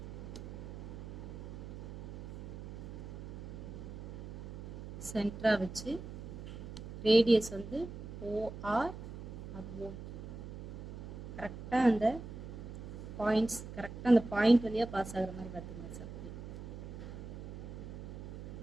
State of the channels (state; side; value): noise; right; hum, 10 dB below the sound